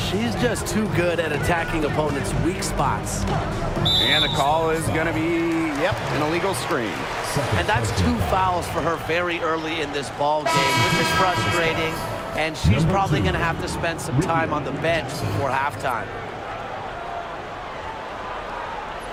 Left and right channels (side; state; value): both; identical; correlation 1.00